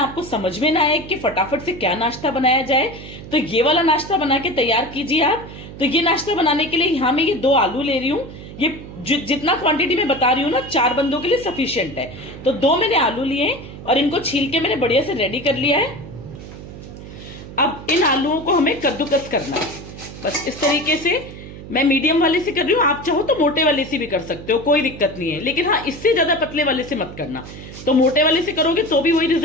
आपको समझ में ना आए कि फटाफट से क्या नाश्ता बनाया जाए, तो ये वाला नाश्ता बना के तैयार कीजिए आप। तो ये नाश्ता बनाने के लिए यहाँ मैं ये 2 आलू ले रही हूँ। ये जितना क्वांटिटी में बता रही हूँ ना, 4 बंदों के लिए सफिशियंट है। तो 2 मैंने आलू लिए और इनको छील के मैंने बढ़िया से रेडी कर लिया है। अब इन आलूओं को हमें कद्दूकस करना है, बस इस तरीके से। मैं मीडियम वाले से कर रही हूँ, आप चाहो तो मोटे वाले से भी कर सकते हो, कोई दिक्कत नहीं है। लेकिन हाँ, इससे ज्यादा पतले वाले से मत करना। तो मोटे वाले से करोगे तो भी वही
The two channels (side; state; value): right; noise; hum, 14 dB below the sound